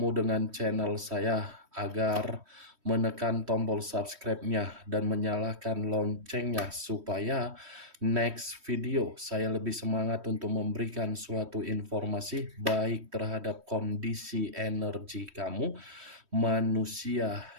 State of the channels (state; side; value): late; left; 3.1 ms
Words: dengan channel saya, agar menekan tombol subscribe-nya dan menyalakan loncengnya supaya next video saya lebih semangat untuk memberikan suatu informasi baik terhadap kondisi energi kamu, manusia